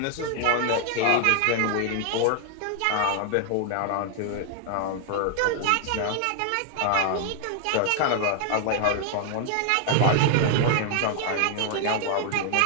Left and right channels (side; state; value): both; different; correlation 0.00